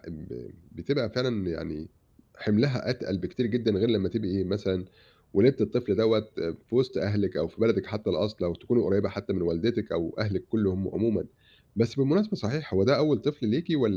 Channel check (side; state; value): both; identical; correlation 1.00